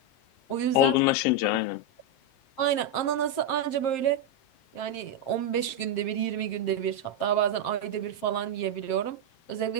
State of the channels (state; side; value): late; right; 7.6 ms